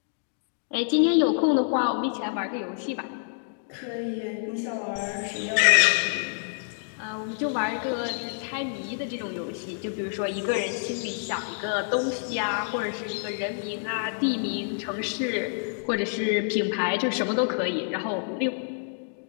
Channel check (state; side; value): silent; right; digital silence